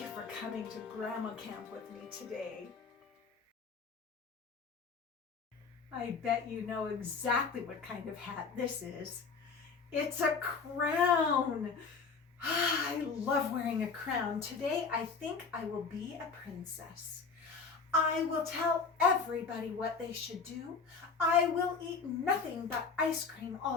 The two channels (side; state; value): right; quieter; 5.1 dB